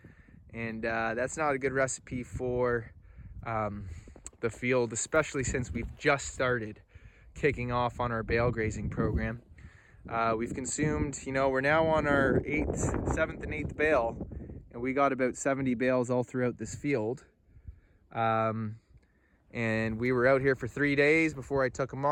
and that's not a good recipe for the field, especially since we've just started kicking off on our bale grazing program. We've consumed, we're now on our 7th and 8th bale, and we got about 70 bales all throughout this field. And we were out here for 3 days before I took them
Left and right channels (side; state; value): both; identical; correlation 1.00